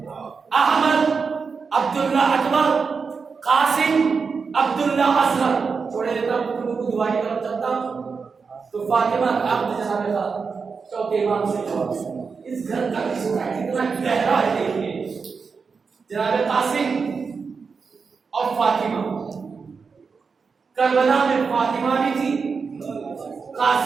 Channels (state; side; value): quieter; left; 5.2 dB